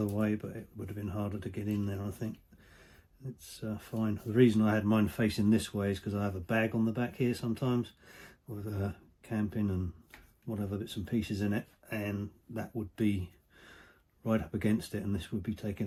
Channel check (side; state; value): both; identical; correlation 1.00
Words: way, but it would have been harder to get in there, I think. it's fine. The reason I had mine facing this way is because I have a bag on the back here sometimes with camping and whatever bits and pieces in it, and that would be right up against it, and this would be